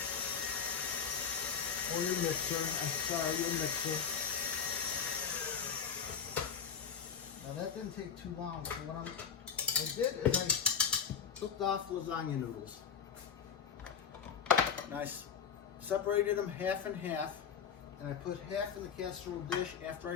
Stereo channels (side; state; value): right; quieter; 7.0 dB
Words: Or your mixer, your mixer. Now that didn't take too long, so what I did is I cooked off lasagna noodles. And I separated them half and half, and I put half in the casserole dish after I